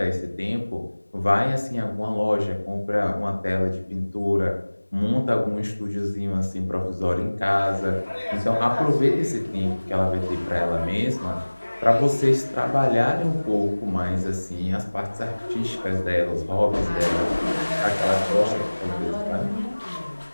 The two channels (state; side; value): inverted; both; correlation -1.00